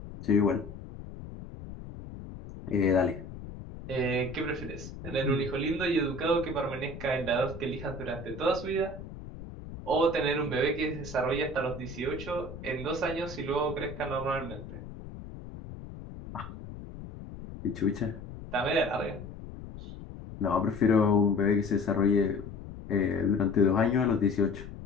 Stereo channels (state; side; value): noise; left; rumble, 12 dB below the sound